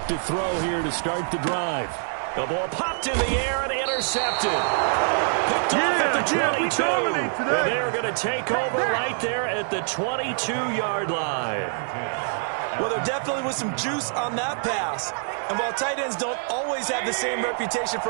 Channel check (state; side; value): silent; left; digital silence